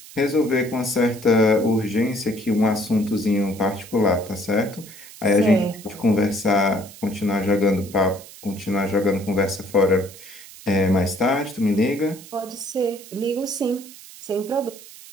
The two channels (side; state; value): right; noise; hiss, 18 dB below the sound